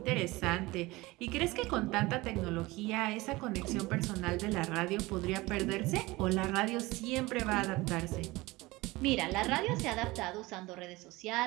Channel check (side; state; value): left; quieter; 21.0 dB